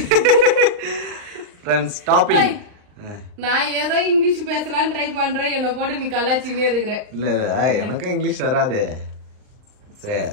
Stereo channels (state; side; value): late; left; 39 ms